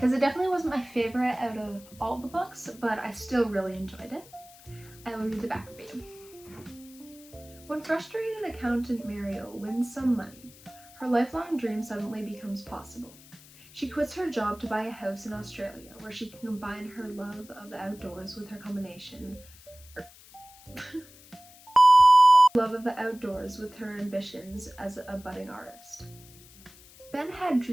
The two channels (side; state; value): left; noise; hiss, 22 dB below the sound